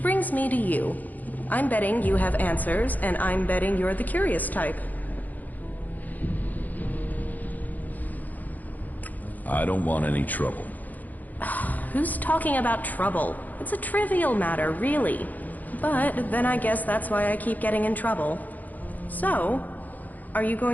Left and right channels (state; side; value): late; right; 0.081 ms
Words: brings me to you. I'm betting you have answers, and I'm betting you're the curious type. I don't want any trouble. Who's talking about trouble? It's a trivial matter, really. But then I guess that's why I keep getting in trouble. So, are you